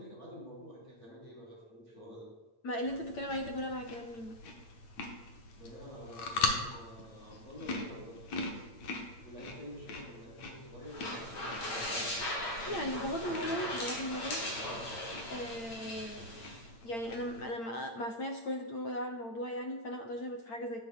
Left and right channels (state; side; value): late; right; 8.8 ms